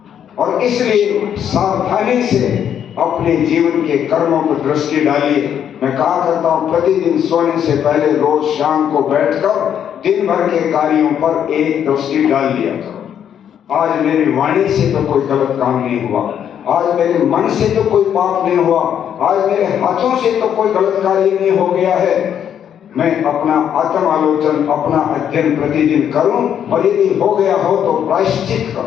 और इसलिए सावधानी से अपने जीवन के कर्मों पर दृष्टि डालिए। मैं कहा करता हूं, प्रतिदिन सोने से पहले रोज शाम को बैठकर दिन भर के कार्यों पर एक दृष्टि डाल दिया करो। आज मेरी वाणी से तो कोई गलत काम नहीं हुआ, आज मेरे मन से तो कोई पाप नहीं हुआ, आज मेरे हाथों से तो कोई गलत कार्य नहीं हो गया है। मैं अपना आत्म आलोचन, अपना अध्ययन प्रतिदिन करूं, और यदि हो गया हो तो प्रायश्चित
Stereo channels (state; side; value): quieter; right; 9.1 dB